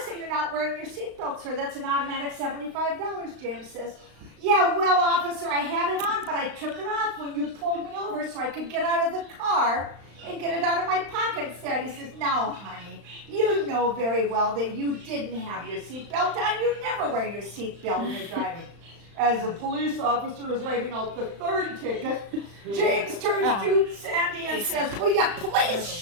that you're not wearing your seatbelt, sir. That's an automatic $75, James says. Yeah, well, officer, I had it on, but I took it off when you pulled me over so I could get out of the car and get it out of my pocket. Sandy says, now, honey, you know very well that you didn't have your seatbelt on. You never wear your seatbelt when you're driving. As the police officer is writing out the third ticket, James turns to Sandy and says, will you please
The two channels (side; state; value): left; late; 35 ms